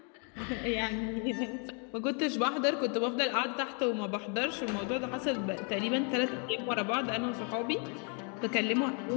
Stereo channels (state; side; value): quieter; right; 38.2 dB